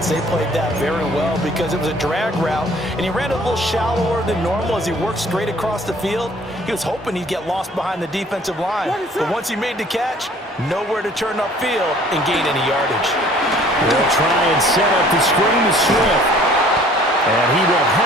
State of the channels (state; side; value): normal; both; correlation 0.55